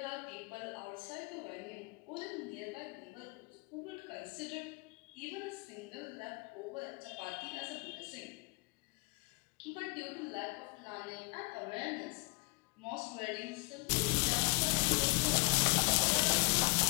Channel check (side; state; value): right; quieter; 28.6 dB